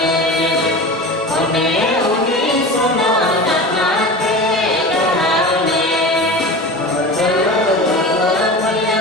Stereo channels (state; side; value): normal; both; correlation 0.31